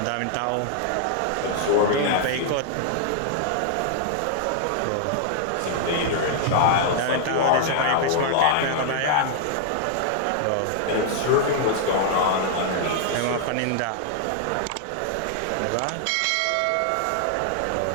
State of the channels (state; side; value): different; both; correlation 0.00